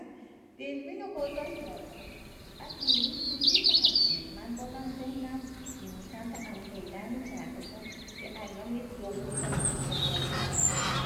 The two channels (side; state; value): both; identical; correlation 1.00